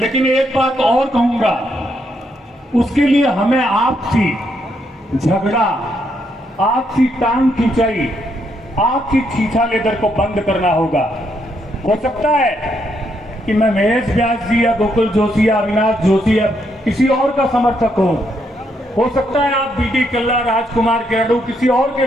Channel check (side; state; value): both; normal; correlation 0.76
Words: एक बात और कहूंगा, उसके लिए हमें आपसी झगड़ा, आपसी टांग खिंचाई, आपसी छीछा लेदर को बंद करना होगा। हो सकता है कि मैं महेश व्यास जी या गोकुल जोशी या अविनाश जोशी या किसी और का समर्थक हूं, हो सकता है आप बीडी कल्ला, राजकुमार गेड़ू किसी और के